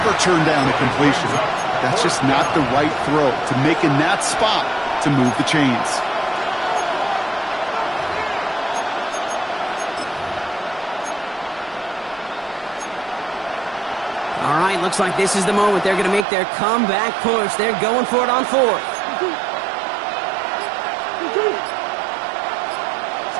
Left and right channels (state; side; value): drops out; left; at 16.2 s